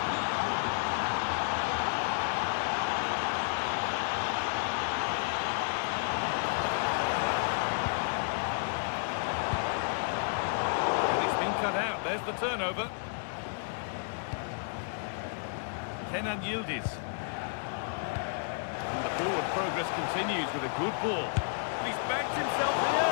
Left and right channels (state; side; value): silent; right; digital silence